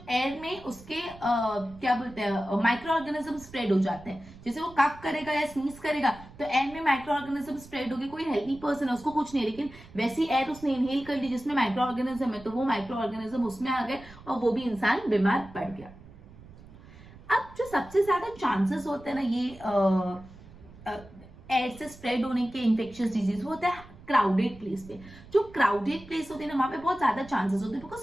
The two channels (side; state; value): right; noise; rumble, 20 dB below the sound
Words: एयर में उसके क्या बोलते हैं माइक्रो ऑर्गेनिज्म स्प्रेड हो जाते हैं. जैसे वो कफ करेगा या स्नीज करेगा तो एयर में माइक्रो ऑर्गेनिज्म स्प्रेड होगी. कोई हेल्दी पर्सन है उसको कुछ नहीं, लेकिन वैसी एयर उसने इनहेल कर ली जिसमें माइक्रो ऑर्गेनिज्म है तो वो माइक्रो ऑर्गेनिज्म उसमें आ गए और वो भी इंसान बीमार पड़ गया. अब जो सबसे ज्यादा चांसेस होते हैं ना ये एयर से स्प्रेड होने के इंफेक्शियस डिजीज वो होता है क्राउडेड प्लेस पे. जो क्राउडेड प्लेस होते हैं ना वहां पे बहुत ज्यादा चांसेस होते हैं